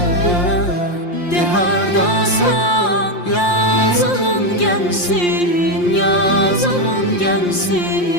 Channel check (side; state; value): right; late; 5.6 ms